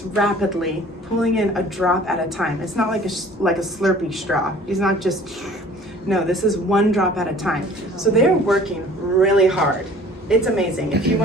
rapidly, pulling in a drop at a time. It's not like a Slurpee straw. It's not just, no, this is one drop at a time. So they're working really hard. It's amazing. If you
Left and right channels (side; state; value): both; normal; correlation 0.49